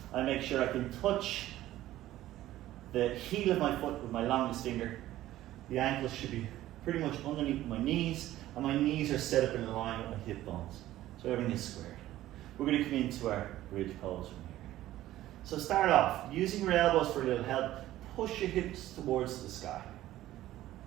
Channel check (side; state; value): left; quieter; 14.6 dB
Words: I make sure I can touch the heel of my foot with my longest finger. The ankles should be pretty much underneath my knees, and my knees are set up in line with my hip bones. So everything is squared. We're going to come into our bridge pose from here. So start off, using your elbows for a little help, push your hips towards the sky.